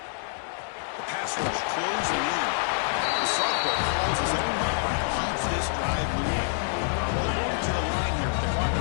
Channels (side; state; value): right; silent; digital silence